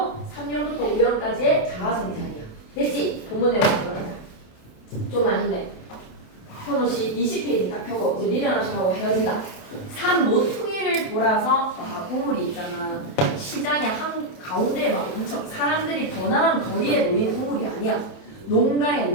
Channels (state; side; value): late; right; 28 ms